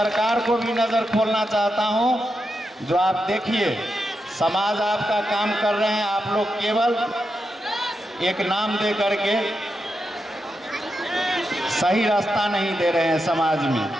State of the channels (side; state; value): both; normal; correlation 0.86